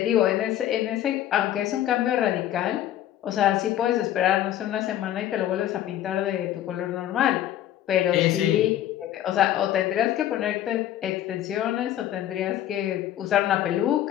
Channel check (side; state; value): right; quieter; 12.2 dB